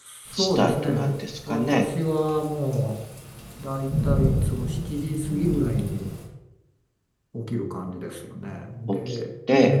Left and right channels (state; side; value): identical; both; correlation 1.00